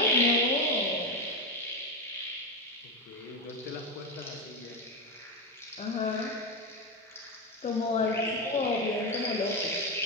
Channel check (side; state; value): both; normal; correlation 0.12